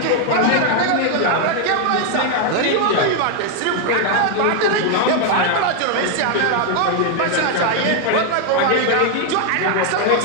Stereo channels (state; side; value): different; both; correlation 0.00